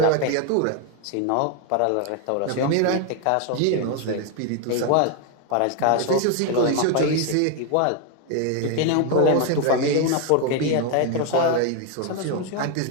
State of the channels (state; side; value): different; both; correlation 0.01